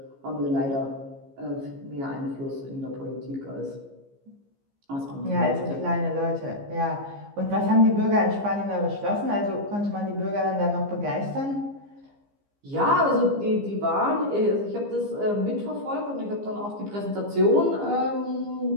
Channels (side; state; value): left; late; 15 ms